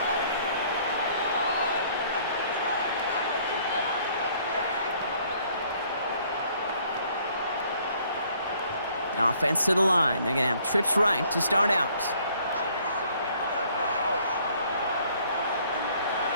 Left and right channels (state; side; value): inverted; both; correlation -0.61